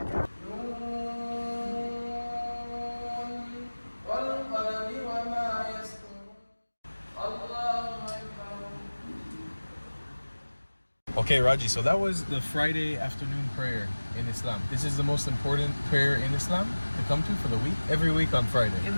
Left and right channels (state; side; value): inverted; both; correlation -1.00